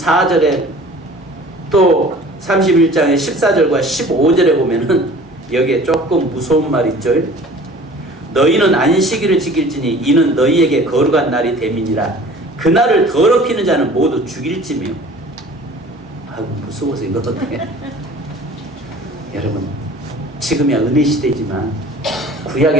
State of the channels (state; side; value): normal; both; correlation 0.46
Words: 또 31장의 14절과 15절에 보면은 여기에 조금 무서운 말 있죠. 너희는 안식일을 지킬지니 이는 너희에게 거룩한 날이 됨이니라. 그날을 더럽히는 자는 모두 죽일지며. 아이고 무서워서 이거 어떻게 여러분 지금이야 은혜 시대지만